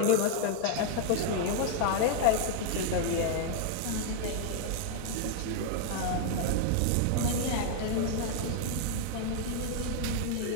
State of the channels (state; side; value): different; both; correlation 0.00